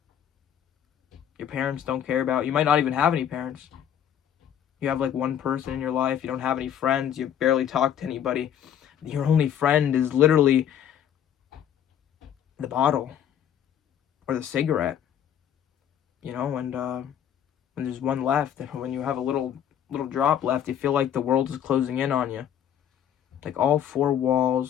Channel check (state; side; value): quieter; right; 9.7 dB